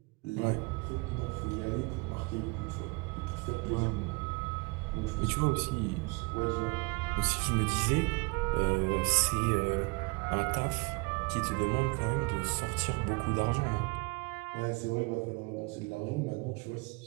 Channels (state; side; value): quieter; left; 28.6 dB